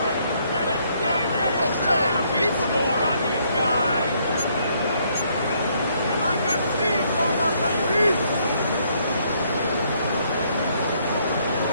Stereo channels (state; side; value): inverted; both; correlation -0.69